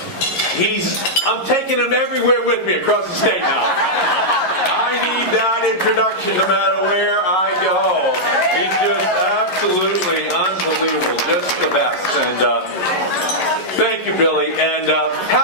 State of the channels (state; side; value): late; right; 11 ms